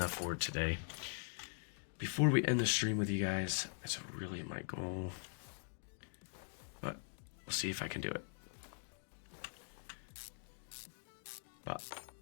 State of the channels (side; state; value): right; silent; digital silence